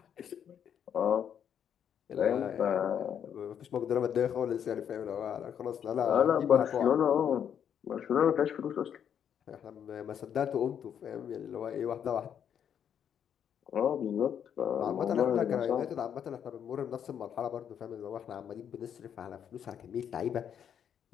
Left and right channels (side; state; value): right; quieter; 8.6 dB